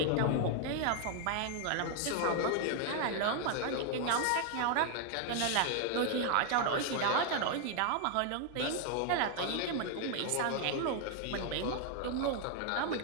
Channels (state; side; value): different; both; correlation 0.00